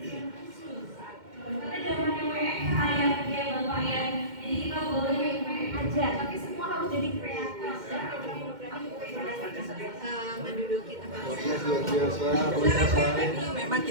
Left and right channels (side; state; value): left; late; 2.1 ms